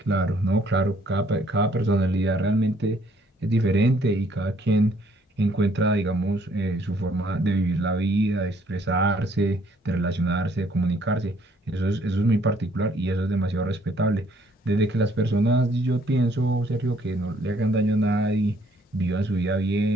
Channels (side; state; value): both; normal; correlation 0.64